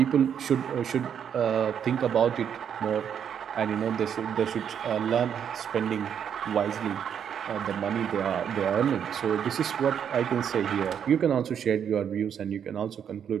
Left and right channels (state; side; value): quieter; left; 8.3 dB